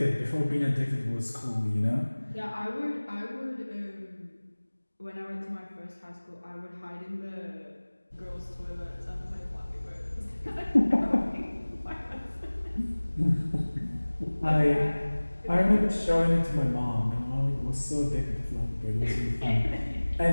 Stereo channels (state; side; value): inverted; both; correlation -1.00